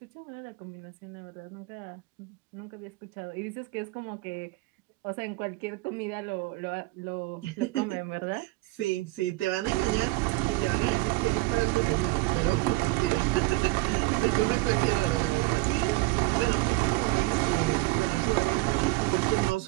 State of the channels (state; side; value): quieter; left; 21.9 dB